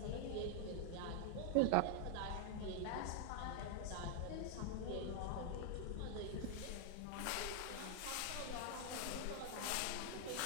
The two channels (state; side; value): different; both; correlation 0.00